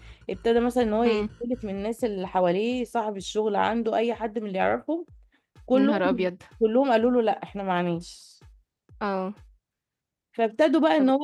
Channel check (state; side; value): identical; both; correlation 1.00